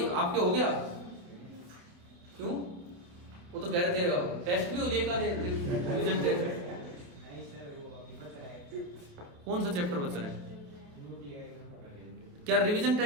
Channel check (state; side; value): late; left; 28 ms